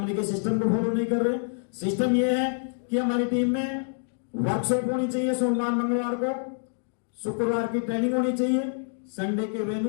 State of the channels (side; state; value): right; silent; digital silence